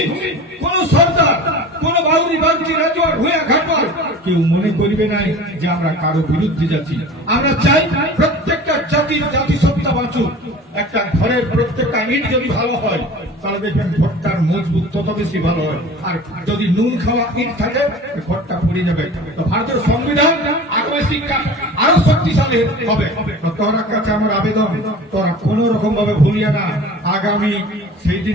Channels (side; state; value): both; normal; correlation 0.39